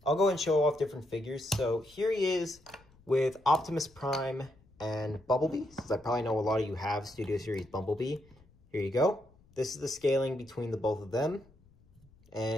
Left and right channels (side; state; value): left; noise; rumble, 28 dB below the sound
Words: go and show off different figures. So here he is with Optimus Prime and Bumblebee, since I probably know a lot of you have Studio Series Bumblebee. Here you go. This is the scaling between the both of them.